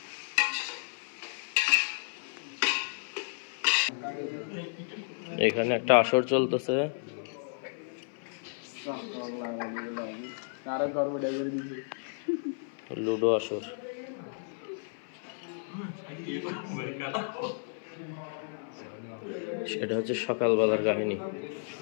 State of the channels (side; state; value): right; silent; 56 dB below the other